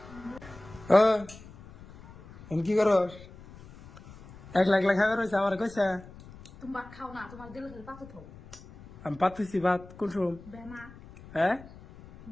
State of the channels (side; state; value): left; noise; rumble, 19 dB below the sound